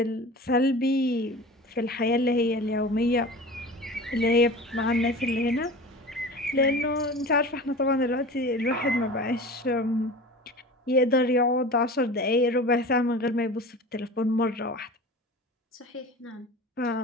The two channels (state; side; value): normal; both; correlation 0.36